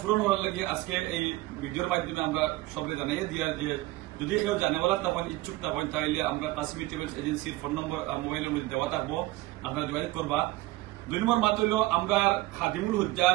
পূরণ হওয়ার লাগে আজকে এই ভিডিওর মাধ্যমে আমরা সবাই জানাইয়ে দিয়া যে যদি কেউ জানেওয়ালা তখন ইচ্ছুক তখন তাইলে আমরা কাসিমি ট্রাভেলস এজেন্সির ফোন নম্বর মোবাইলের মধ্যে দেওয়া থাকবো, আপনারা যোগাযোগ করবা। 2 নম্বর মাত হইল আমরা খাদিমুল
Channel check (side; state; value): left; quieter; 19.0 dB